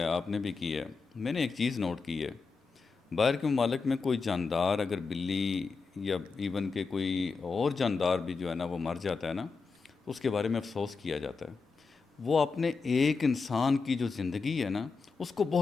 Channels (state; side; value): quieter; right; 4.6 dB